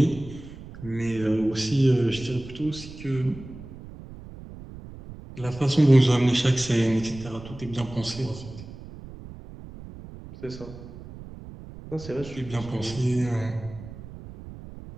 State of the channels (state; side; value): noise; right; rumble, 15 dB below the sound